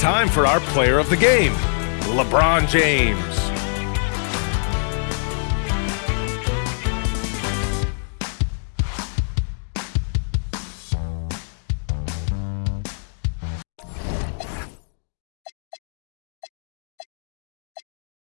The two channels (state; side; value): silent; right; digital silence